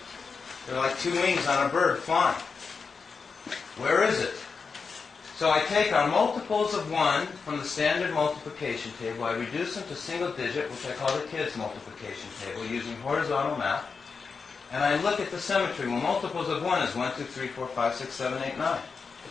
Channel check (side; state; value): right; quieter; 5.1 dB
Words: They're like 2 wings on a bird flying. Where is it? So I take our multiples of 1 from the standard multiplication table, I reduce them to single digit, which I call the kids' multiplication table, using horizontal math, and I look at the symmetry. Well, multiples of 1 is 1, 2, 3, 4, 5, 6, 7, 8, 9.